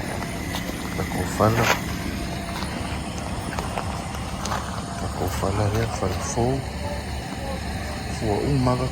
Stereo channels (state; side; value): identical; both; correlation 1.00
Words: Tako whala. Tako whala rea, whala fou. Fua umaga